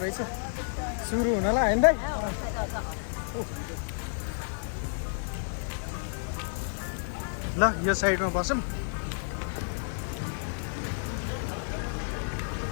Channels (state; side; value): silent; right; 58 dB below the other